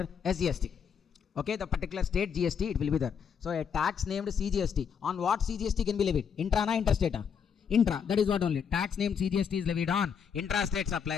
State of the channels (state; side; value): quieter; right; 7.1 dB